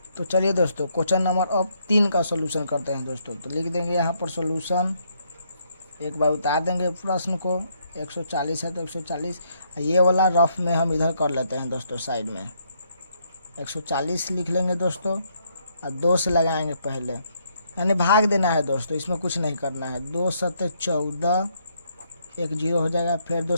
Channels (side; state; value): both; inverted; correlation -0.72